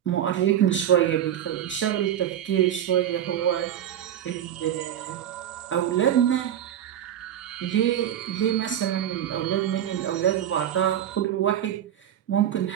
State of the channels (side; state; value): left; quieter; 10.5 dB